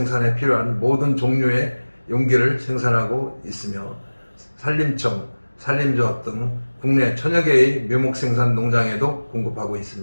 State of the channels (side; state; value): both; inverted; correlation -1.00